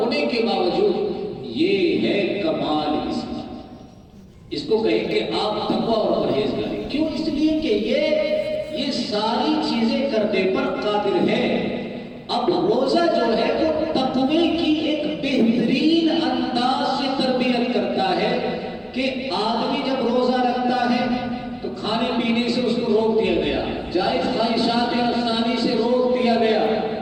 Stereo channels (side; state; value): both; identical; correlation 1.00